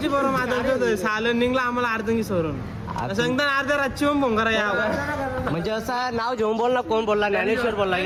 बरोबर माझं सालन निघला आम्हाला अर्धंगी सोडून सांगता अर्ध्या रातची फोन करा या. म्हणजे असं नाव घेऊन बोल ना. कोण बोलला? ज्ञानेश्वर बोलला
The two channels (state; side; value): identical; both; correlation 1.00